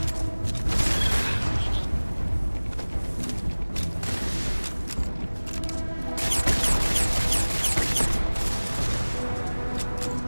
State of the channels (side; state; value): both; inverted; correlation -1.00